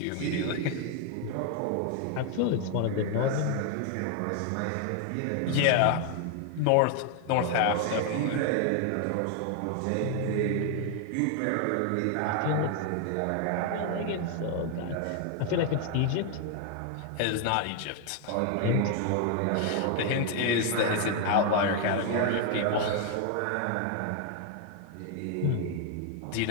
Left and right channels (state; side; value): different; both; correlation 0.00